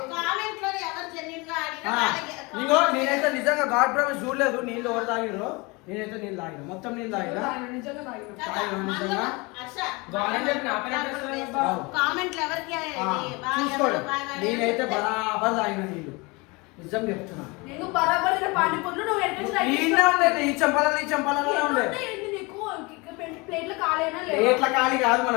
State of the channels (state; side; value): quieter; right; 26.4 dB